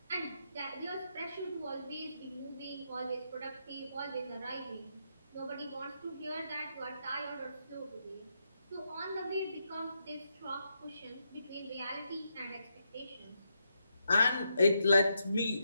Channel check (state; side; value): inverted; both; correlation -0.81